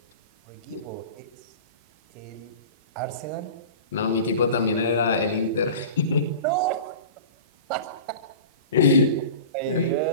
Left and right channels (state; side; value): inverted; both; correlation -0.37